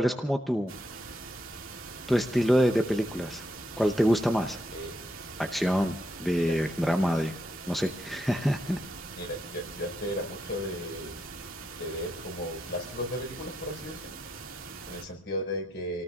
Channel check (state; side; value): normal; both; correlation 0.80